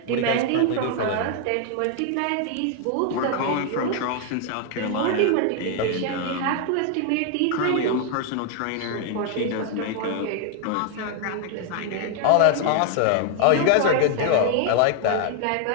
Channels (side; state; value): both; different; correlation 0.00